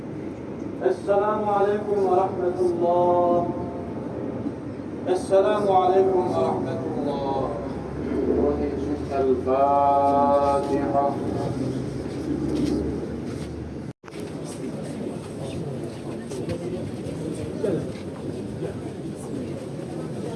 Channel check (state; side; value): identical; both; correlation 1.00